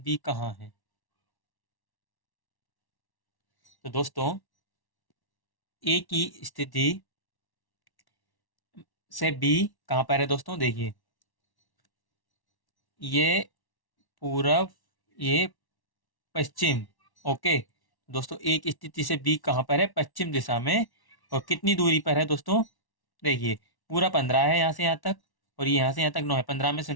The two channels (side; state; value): right; late; 1.1 ms